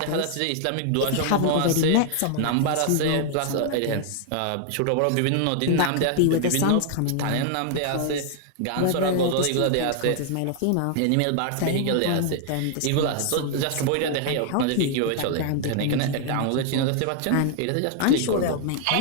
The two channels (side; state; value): both; different; correlation 0.00